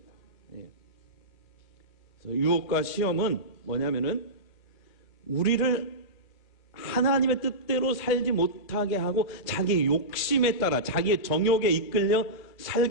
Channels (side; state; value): right; late; 2.4 ms